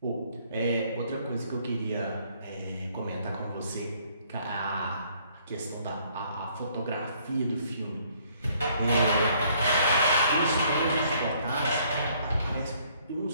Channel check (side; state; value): both; inverted; correlation -0.64